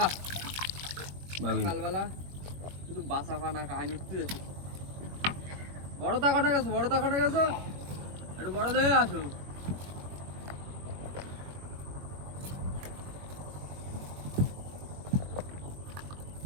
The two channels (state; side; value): late; left; 21 ms